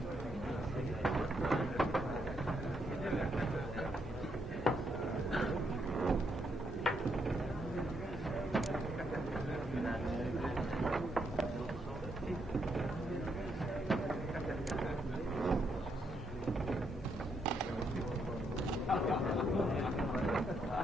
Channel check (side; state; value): both; normal; correlation 0.77